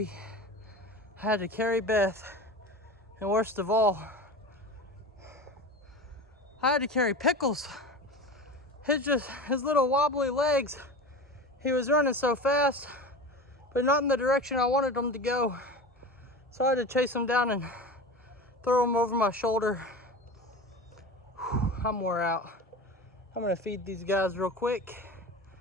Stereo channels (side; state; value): both; normal; correlation 0.31